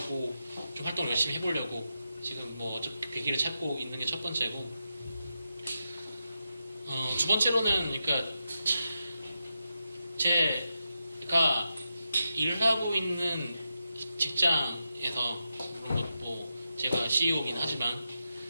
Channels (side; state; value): both; inverted; correlation -0.87